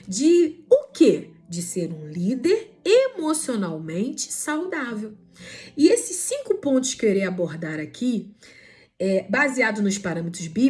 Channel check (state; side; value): identical; both; correlation 1.00